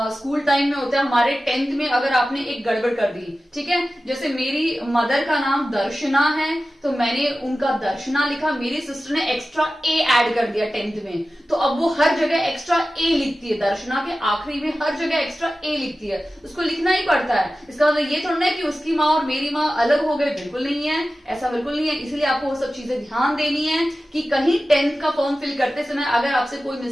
स्कूल टाइम में होते हैं हमारे 10th में अगर आपने एक गड़बड़ कर दी, ठीक है, जैसे मेरी मदर का नाम दर्शना है तो मैंने उनका दर्शना लिखा, मेरी सिस्टर ने एक्स्ट्रा ए ऐड कर दिया 10th में, तो अब वो हर जगह एक्स्ट्रा ए लिखती है, दर्शना के आखिरी में हर जगह एक्स्ट्रा ए लिखती है, उसको लिखना ही पड़ता है। इसका मतलब ये थोड़ा है कि उसकी माँ और मेरी माँ अलग हो गए, बिल्कुल नहीं है, ऐसा बिल्कुल नहीं है। इसलिए आपको वो सब चीजें ध्यान देनी है कि कहीं 10th का फॉर्म फिल करते समय अगर आपसे कोई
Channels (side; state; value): both; normal; correlation 0.95